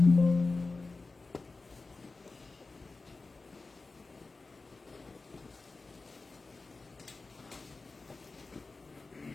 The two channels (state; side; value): quieter; right; 3.7 dB